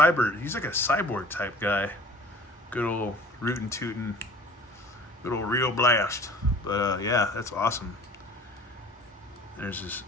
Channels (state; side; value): normal; both; correlation 0.46